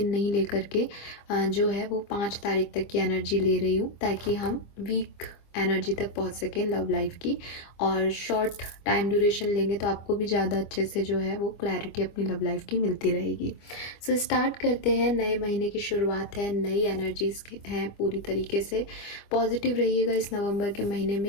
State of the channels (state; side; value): late; right; 25 ms